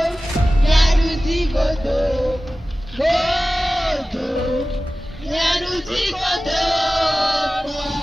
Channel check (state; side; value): normal; both; correlation 0.96